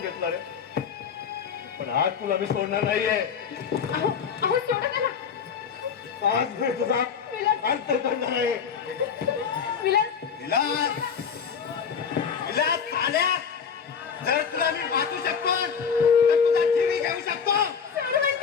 घेतला रे. पण आज तुला मी सोडणार नाहीये. अहो अहो सोडा त्याला. आज मी तुझा अंत करणार आहे. विलास विलास, विलास चाल्या, जर तुला मी वाचू शकतो तर तुझा जीवी घेऊ शकतो. सोड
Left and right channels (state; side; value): quieter; right; 6.8 dB